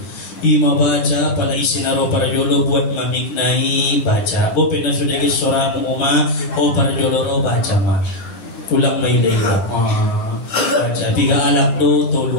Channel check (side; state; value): right; late; 11 ms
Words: Ima baca pala isinaro para jolo buat mamiknai baca. Bo pina sudah ke soramu uma o para jolo ro baca ma. Ulang may leila. Baca. Biga alak do